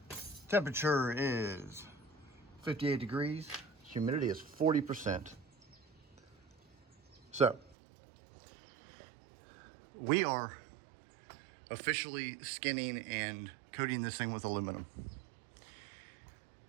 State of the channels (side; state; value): left; drops out; at 7.8 s